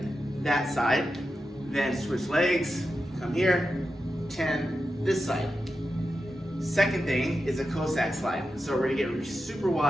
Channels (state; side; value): normal; both; correlation 0.90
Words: that side, then switch legs, come here, 10 this side. Second thing is a Cossack slide. So we're gonna get super